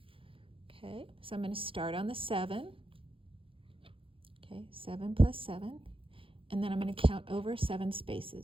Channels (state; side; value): late; left; 0.26 ms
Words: Okay, so I'm going to start on the 7. Okay, 7 plus 7. And then I'm going to count over 7